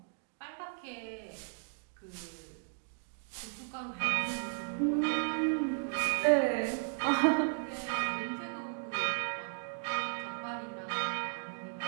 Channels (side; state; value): left; silent; digital silence